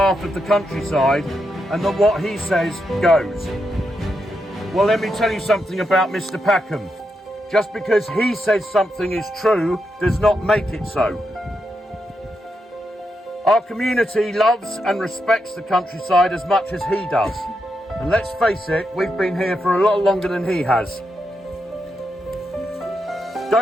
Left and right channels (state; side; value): normal; both; correlation 0.84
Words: of the countryside and that what he says goes. Well, let me tell you something about Mr. Packham. Just because he says something is true does not make it so. Our community loves and respects the countryside as much as he does. And let's face it, we've been here for a lot longer than he has.